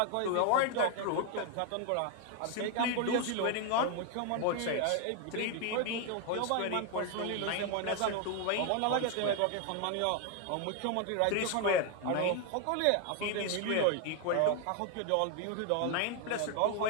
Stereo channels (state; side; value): different; both; correlation 0.01